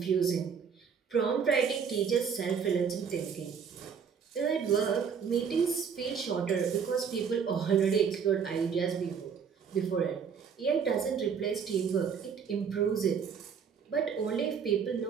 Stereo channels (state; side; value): quieter; left; 6.7 dB